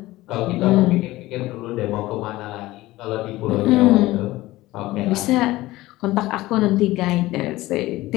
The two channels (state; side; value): quieter; right; 18.0 dB